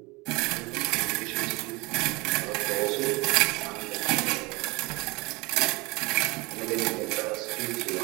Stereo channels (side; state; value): left; quieter; 24.8 dB